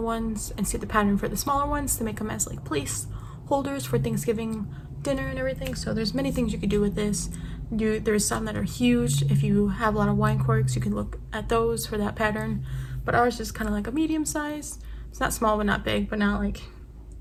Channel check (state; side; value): identical; both; correlation 1.00